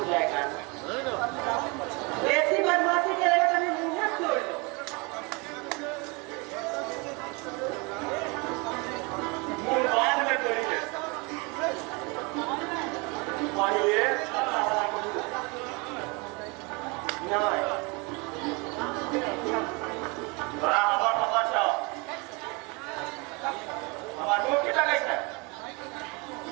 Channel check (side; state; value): left; quieter; 29.1 dB